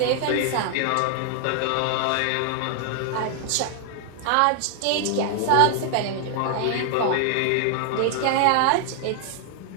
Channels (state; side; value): different; both; correlation 0.00